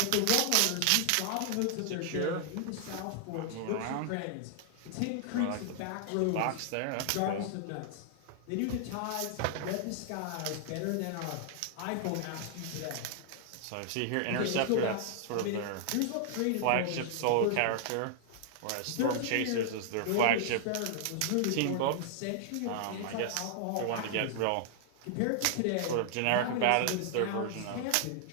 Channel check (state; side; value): different; both; correlation -0.01